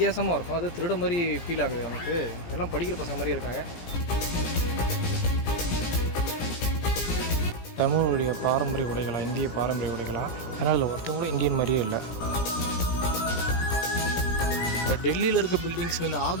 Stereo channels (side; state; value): right; late; 17 ms